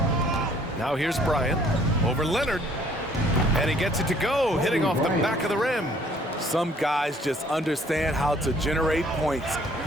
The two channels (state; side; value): normal; both; correlation 0.59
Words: Now here's Bryant over Leonard. And he gets it to go, hitting off the back of the rim. Some guys just understand how to generate points.